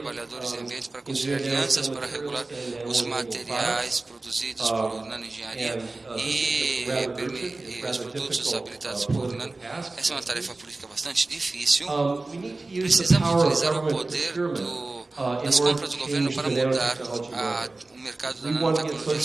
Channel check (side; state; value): left; quieter; 3.2 dB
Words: e ambientes para construir alianças para regular os materiais produzidos por nanoengenharia e os produtos habilitados por nano. Essa é uma tarefa política bastante difícil. Precisamos utilizar o poder das compras do governo para mudar o mercado da nanotecnologia.